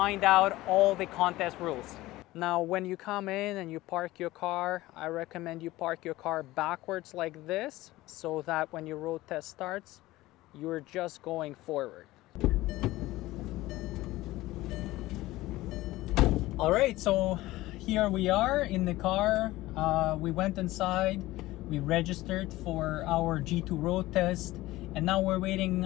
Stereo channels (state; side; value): quieter; right; 17.8 dB